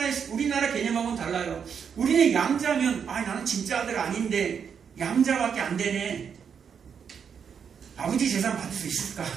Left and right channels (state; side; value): quieter; left; 7.1 dB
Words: 우리나라 개념하고는 달라요. 우리는 양자면, 나는 진짜 아들 아닌데 양자밖에 안 되네. 아버지 재산 받을 수 있을까?